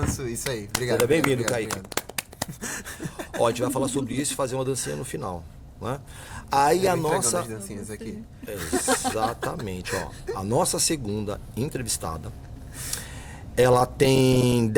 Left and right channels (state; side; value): identical; both; correlation 1.00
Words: Isso aí, obrigado. Seja bem-vindo, Kaique. Ó, a gente vai falar sobre isso e fazer uma dancinha no final, né? Aí a nossa... Aqui. Exatamente, ó. A nossa segunda entrevistada, ela tem